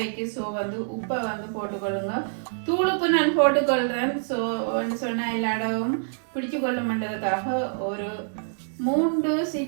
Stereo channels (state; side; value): silent; left; digital silence